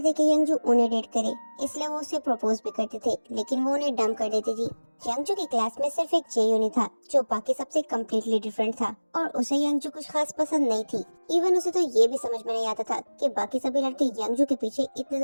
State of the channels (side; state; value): both; inverted; correlation -1.00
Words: थे कि यंगजू उन्हें डेट करे, इसलिए वो उसे प्रपोज भी करते थे, लेकिन वो उन्हें डंप कर देती थी। यंगजू की क्लास में सिर्फ एक जेयुन ही था जो बाकी सबसे कम्प्लीटली डिफरेंट था और उसे यंगजू कुछ खास पसंद नहीं थी। इवन उसे तो ये भी समझ में नहीं आता था कि बाकी सभी लड़के यंगजू के पीछे इतने